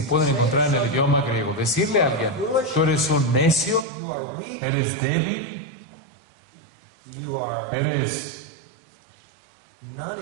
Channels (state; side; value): drops out; left; at 3.9 s